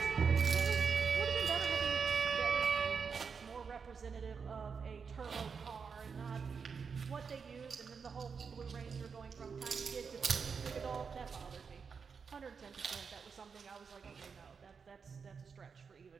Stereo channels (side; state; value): left; quieter; 5.8 dB